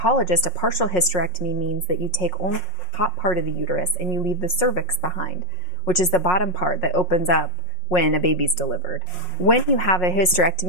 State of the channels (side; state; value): right; late; 5.5 ms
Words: a partial hysterectomy means that you take only the top part of the uterus and you leave the cervix behind, which is the bottom part that opens up when a baby's delivered. When you have a